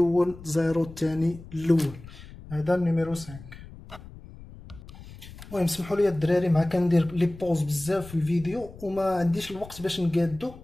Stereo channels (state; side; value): noise; left; rumble, 17 dB below the sound